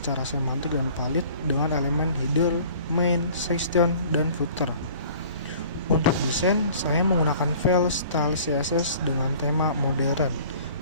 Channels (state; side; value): inverted; both; correlation -0.49